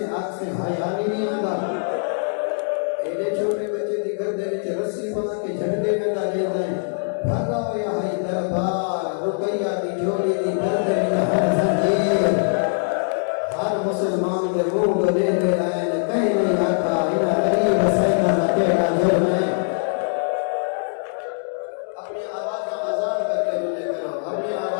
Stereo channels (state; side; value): silent; right; digital silence